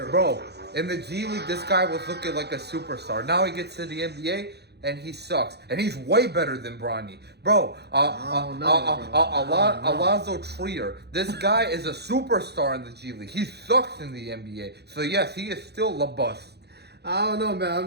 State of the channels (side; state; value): left; late; 0.48 ms